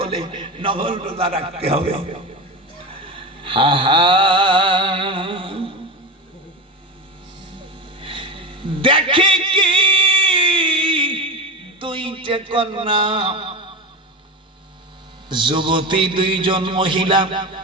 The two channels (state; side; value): normal; both; correlation 0.21